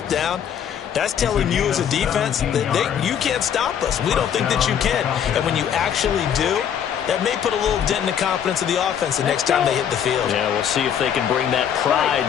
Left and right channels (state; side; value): quieter; right; 8.8 dB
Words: down, that's telling you as a defense that you can't stop us. We don't think that you can. And when you actually do, that may put a little dent in the confidence of the offense the next time they hit the field. Yeah, we'll see if they can bring that pride